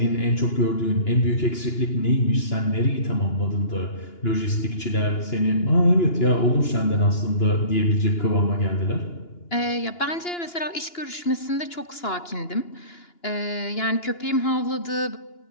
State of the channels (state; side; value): late; right; 2.9 ms